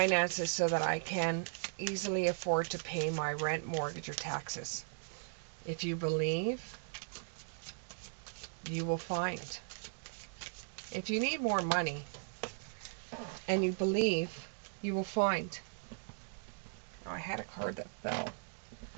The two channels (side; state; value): left; silent; digital silence